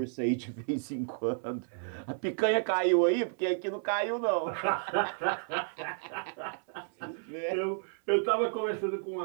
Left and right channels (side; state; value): left; silent; 57 dB below the other